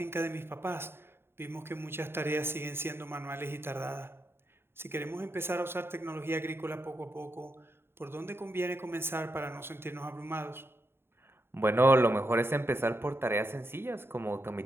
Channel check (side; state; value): left; late; 0.11 ms